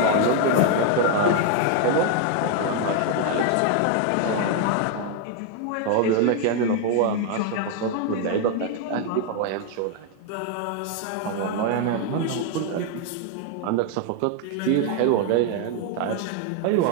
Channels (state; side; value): different; both; correlation 0.00